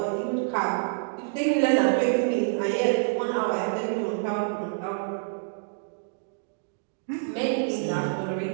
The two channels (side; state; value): left; silent; digital silence